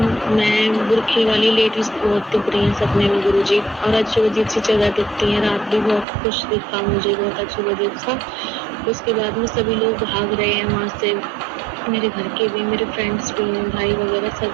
मैं बुरखे वाली लेडीज बहुत दिख रही हैं सपने में गुरुजी, और अजीब अजीब सी जगह दिखती हैं। रात भी बहुत कुछ दिखा मुझे, बहुत अजीब अजीब सा। उसके बाद में सभी लोग भाग रहे हैं वहाँ से, मेरे घर के भी, मेरे फ्रेंड्स भी हैं, भाई वगैरह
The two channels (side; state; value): left; drops out; at 6.1 s